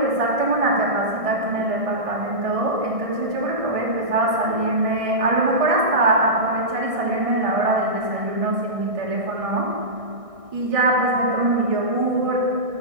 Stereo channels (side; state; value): left; late; 1.6 ms